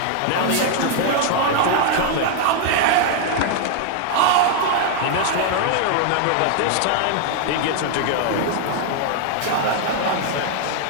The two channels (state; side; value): different; both; correlation 0.00